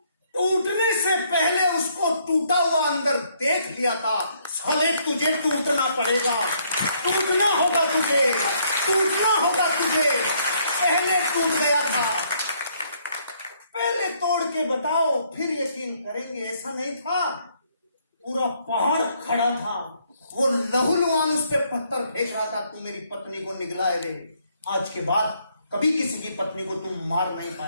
टूटने से पहले उसको टूटा हुआ अंदर देख लिया था। साले तुझे टूटना पड़ेगा, टूटना होगा तुझे। टूटना होगा तुझे, पहले टूट गया था। पहले तोड़ के बताओ फिर यकीन करेंगे। ऐसा नहीं था, पूरा पहाड़ खड़ा था, वो लहूलुहान उस पे पत्थर फेंक रहा था, तू मेरी पत्नी को निगला रे। आज के बाद कभी किसी की पत्नी को तुम मार नहीं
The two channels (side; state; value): both; inverted; correlation -0.69